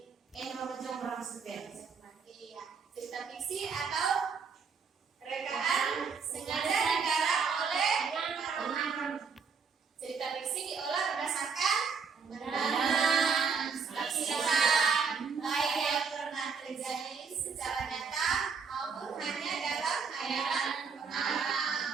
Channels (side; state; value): left; quieter; 5.7 dB